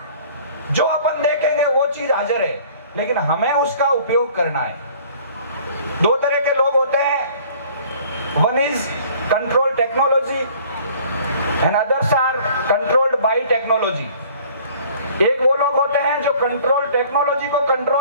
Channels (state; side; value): inverted; both; correlation -0.52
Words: जो अपन देखेंगे वो चीज हाजिर है, लेकिन हमें उसका उपयोग करना है। दो तरह के लोग होते हैं, one is control technology and others are controlled by technology. एक वो लोग होते हैं जो कंट्रोल टेक्नोलॉजी को